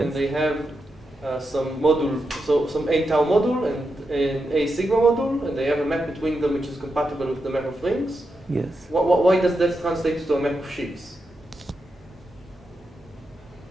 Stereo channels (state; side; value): normal; both; correlation 0.87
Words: and they have some module, so some A tau module and an A sigma module, and they have a map between them which is compatible with the map of rings. yes. Why does that translate to a map of sheaves?